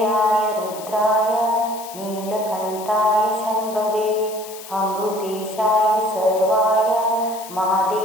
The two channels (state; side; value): noise; left; hiss, 15 dB below the sound